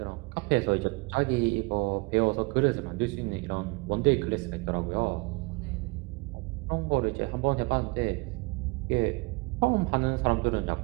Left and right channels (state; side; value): quieter; left; 27.2 dB